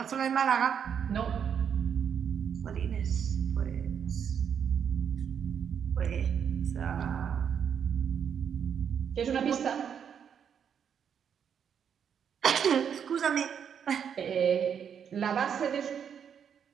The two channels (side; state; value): left; quieter; 7.8 dB